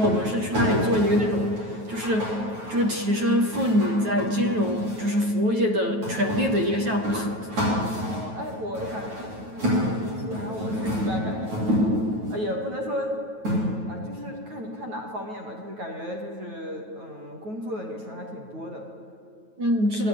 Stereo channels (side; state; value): left; late; 9.3 ms